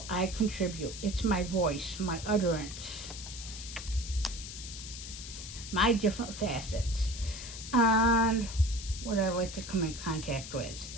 I contribute. It's my voice, my utterance, my different facets, and what I like to come in contact with.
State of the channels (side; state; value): left; noise; hiss, 10 dB below the sound